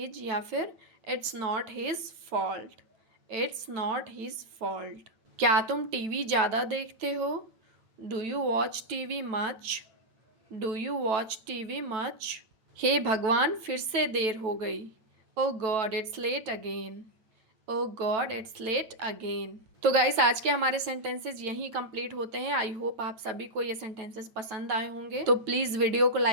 या फिर It's not his fault. It's not his fault. क्या तुम टीवी ज़्यादा देखते हो? Do you watch TV much? Do you watch TV much? हे भगवान फिर से देर हो गई. Oh God, it's late again. Oh God, it's late again. तो गाइस आज के हमारे सेंटेंसेस यहीं कंप्लीट होते हैं. आई होप आप सभी को ये सेंटेंसेस पसंद आए होंगे. तो प्लीज़ वीडियो को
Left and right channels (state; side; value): late; left; 9.2 ms